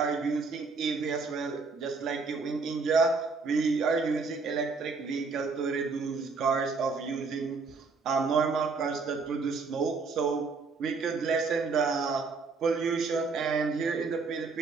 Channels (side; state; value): left; quieter; 4.5 dB